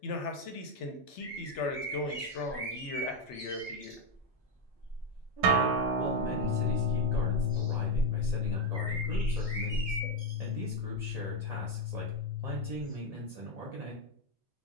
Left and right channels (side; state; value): both; normal; correlation 0.06